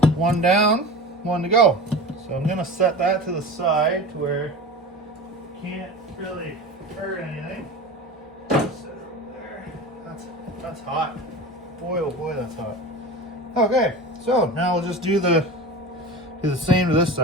One down, one to go. So I'm gonna set that to the side to where it can't really hurt anything. Set it over there. That's hot. Boy, oh boy, that's hot. Okay, so now we'll just do the same to this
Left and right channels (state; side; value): normal; both; correlation 0.32